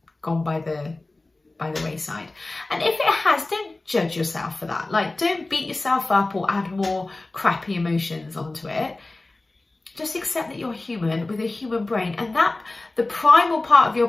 gone by the wayside. And if it has, don't judge yourself for that. Like, don't beat yourself up or add more crappy emotions onto it. Just accept that you're human with a human brain, and that the primal part of your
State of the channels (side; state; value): right; quieter; 3.0 dB